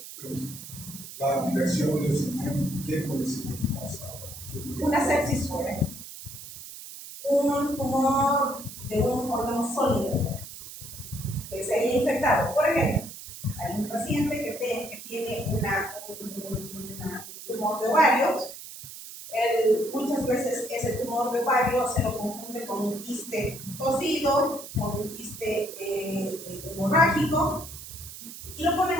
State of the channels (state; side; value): noise; right; hiss, 13 dB below the sound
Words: La versión del sistema, ¿qué puede ser? Una sepsis fuera. Un tumor de un órgano sólido que se haya infectado. Por ejemplo, hay un paciente que tiene un tumor de ovarios. Muchas veces ese tumor de ovario se lo confunde con un quiste cocido, con un quiste hemorrágico, y lo ponen